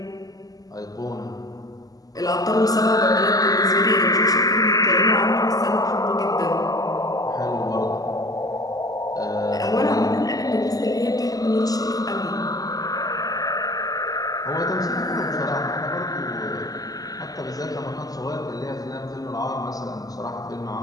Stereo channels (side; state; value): right; late; 0.17 ms